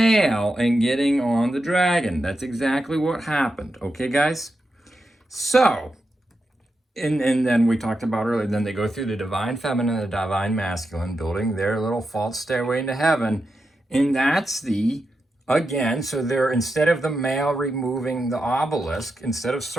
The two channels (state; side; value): normal; both; correlation 0.88